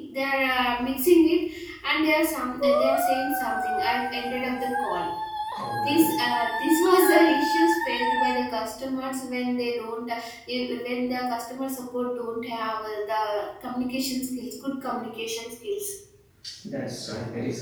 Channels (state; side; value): identical; both; correlation 1.00